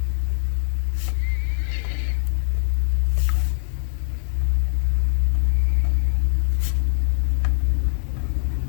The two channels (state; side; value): silent; right; digital silence